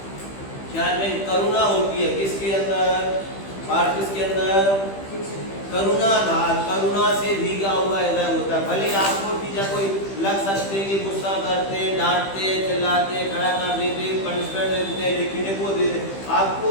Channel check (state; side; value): late; right; 15 ms